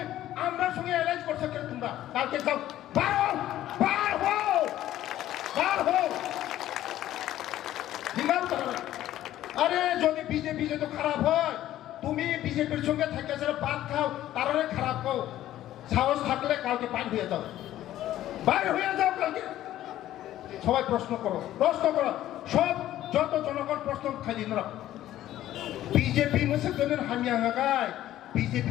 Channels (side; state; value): right; quieter; 13.3 dB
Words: আমরা সঙ্গে অ্যালাইজ করছে কেন? তোমরা কালকে যাও, বার হও। আরে যদি বিজেপি যদি খারাপ হয়, তুমি বিজেপির সঙ্গে থেকে যারা ভাত খাও, তারপরে খারাপ হও। সাহস থাকলে কালকে বাইর হয়ে যাও কালকে। সবাই প্রশ্ন করো। সব যত জনগণ প্রশ্ন খালি না। বিজেপি মোসাদের হামিয়া গায়, বিজেপি